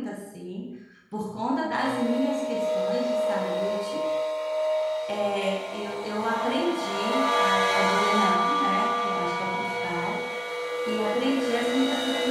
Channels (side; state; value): both; identical; correlation 1.00